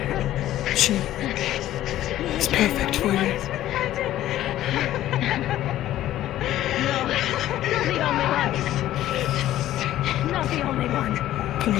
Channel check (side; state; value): right; quieter; 13.5 dB